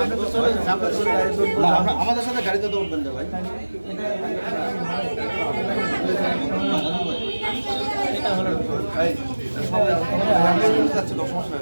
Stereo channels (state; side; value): inverted; both; correlation -1.00